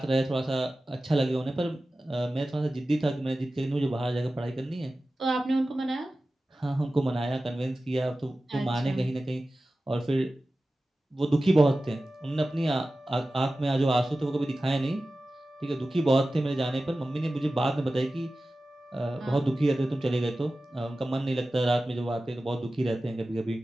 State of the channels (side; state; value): both; normal; correlation 0.95